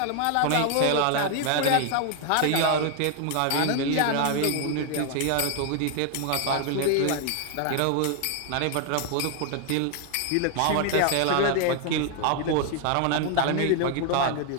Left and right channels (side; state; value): both; different; correlation 0.00